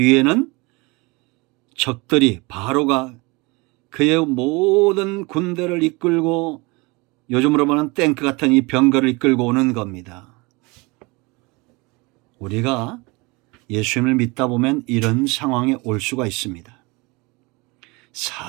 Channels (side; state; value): left; quieter; 25.9 dB